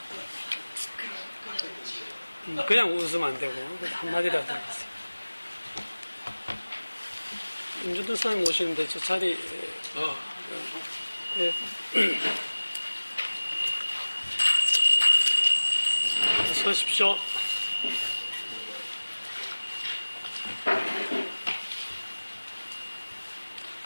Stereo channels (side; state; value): both; inverted; correlation -1.00